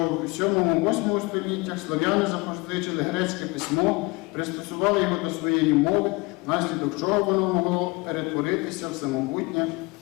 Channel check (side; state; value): right; quieter; 25.4 dB